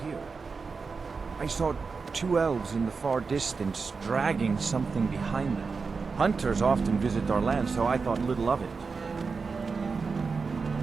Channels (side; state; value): left; quieter; 4.8 dB